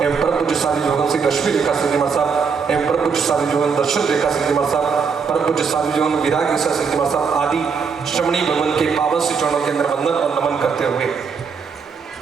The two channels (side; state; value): left; quieter; 5.8 dB